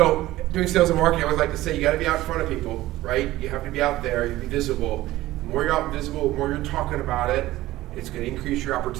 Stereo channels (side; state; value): left; quieter; 16.5 dB